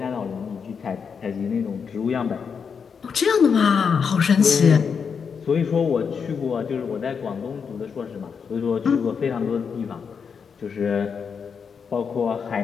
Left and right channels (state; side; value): quieter; right; 6.3 dB